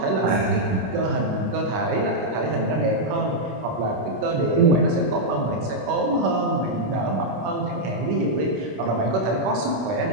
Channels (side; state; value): left; late; 26 ms